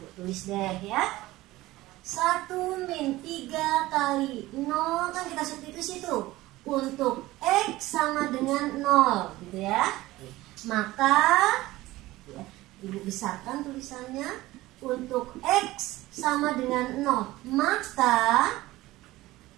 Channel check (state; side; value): quieter; left; 17.9 dB